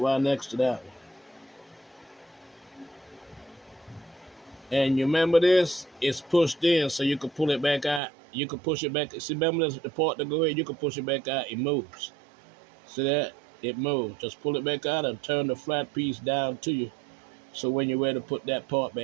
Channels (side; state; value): left; drops out; at 8.0 s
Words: right next to that one. And you remember this? It's pushed in, so you can pull it back out. You can push it back. See, remember this, the part that go here? You can push it back out. It moves. See that? It moves. Just pull it back out and turn the flat piece down to you. So when you're ready to put that part